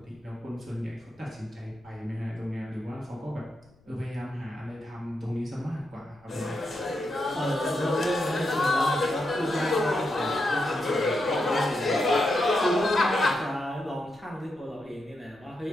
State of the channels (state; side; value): noise; left; rumble, 29 dB below the sound